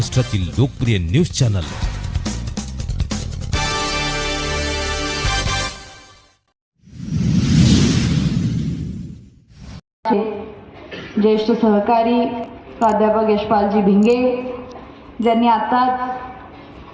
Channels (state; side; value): identical; both; correlation 1.00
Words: लोकप्रिय न्यूज चॅनल। ज्येष्ठ सहकारी प्राध्यापक यशपालजी भिंगे ज्यांनी आताच